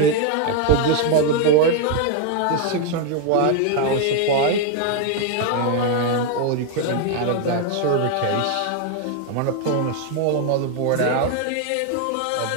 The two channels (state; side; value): different; both; correlation 0.00